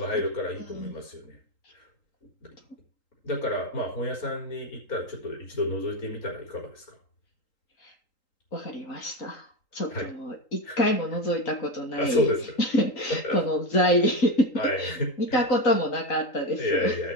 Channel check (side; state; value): right; late; 3.8 ms